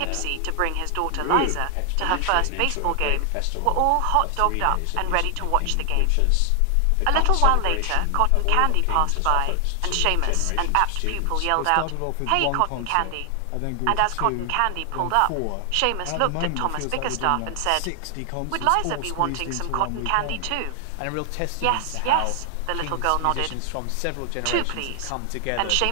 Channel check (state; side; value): different; both; correlation 0.00